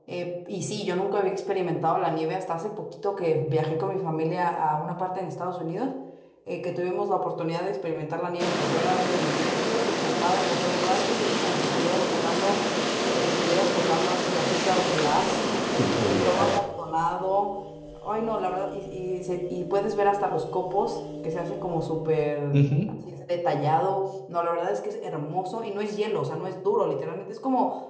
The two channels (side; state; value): both; identical; correlation 1.00